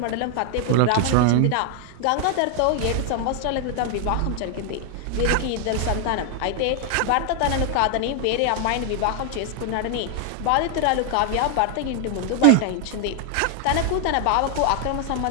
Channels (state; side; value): different; both; correlation 0.00